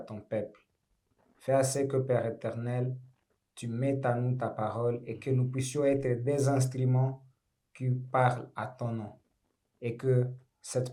peuple. Fais assez que, Père éternel, tu mettes à nous ta parole et que nous puissions être des instruments qui parlent à ton nom. Et que cette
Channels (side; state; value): both; identical; correlation 1.00